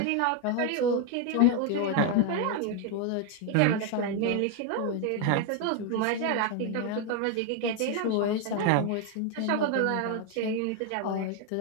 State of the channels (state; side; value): different; both; correlation 0.01